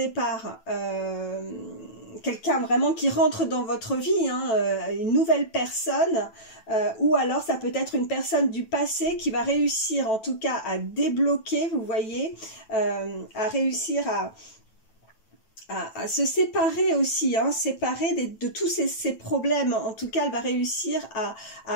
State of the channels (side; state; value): right; late; 9.1 ms